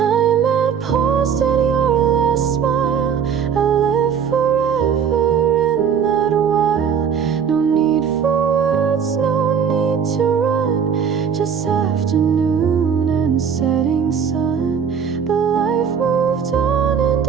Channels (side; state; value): left; quieter; 7.3 dB